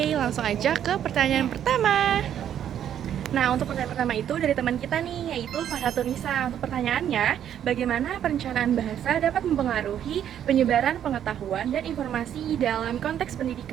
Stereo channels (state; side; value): quieter; left; 9.9 dB